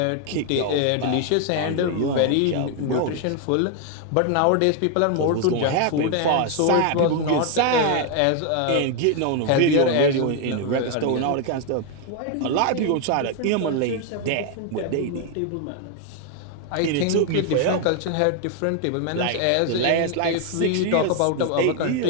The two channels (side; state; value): both; different; correlation 0.01